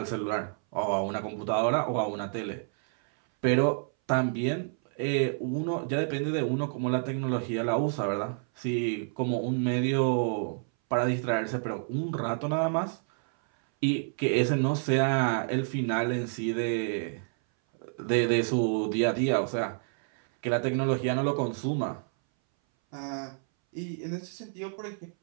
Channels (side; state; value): left; silent; 59 dB below the other